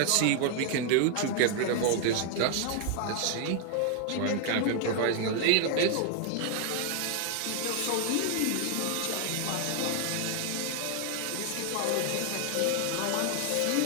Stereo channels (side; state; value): both; different; correlation 0.00